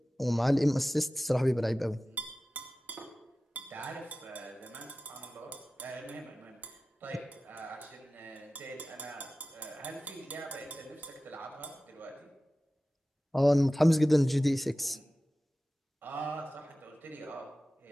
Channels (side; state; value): both; normal; correlation 0.96